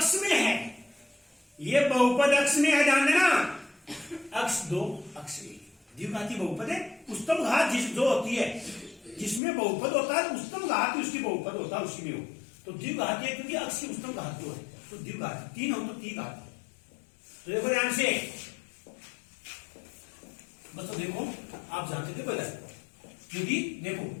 में है, ये बहुपद अक्ष में है। ध्यान देना, अक्ष 2 अक्ष 1, द्विघाती बहुपद है। उच्चतम घात जो होती है, जिसमें बहुपद होता है, उच्चतम घात उसकी बहुपद होता है, उसी में हो तो द्विघाती है, क्योंकि अक्ष की उच्चतम घात 2 है, तो द्विघाती 3 हो तो द्विघाती। तो देखो ध्यान से, बस तो देखो, आप जानते थे पहले, क्योंकि देखो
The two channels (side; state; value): right; drops out; at 9.4 s